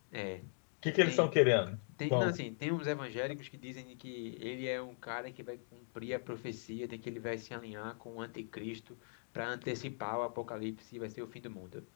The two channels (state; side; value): silent; right; digital silence